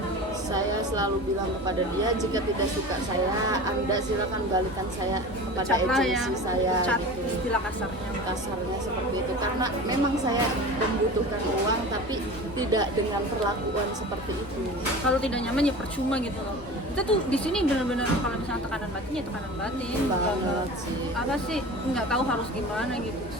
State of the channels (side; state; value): both; normal; correlation 0.34